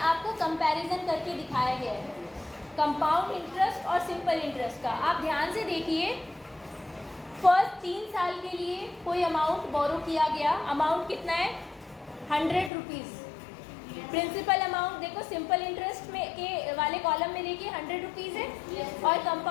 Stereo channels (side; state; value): right; drops out; at 12.7 s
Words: आपको कंपैरिजन करके दिखाया गया है कंपाउंड इंटरेस्ट और सिंपल इंटरेस्ट का। आप ध्यान से देखिए, फर्स्ट 3 साल के लिए कोई अमाउंट बोरो किया गया, अमाउंट कितना है 100 रुपीज़। प्रिंसिपल अमाउंट देखो सिंपल इंटरेस्ट में के वाले कॉलम में देखिए 100 रुपीज़ है और